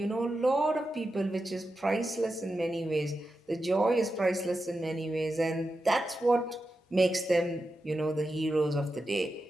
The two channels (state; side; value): normal; both; correlation 0.90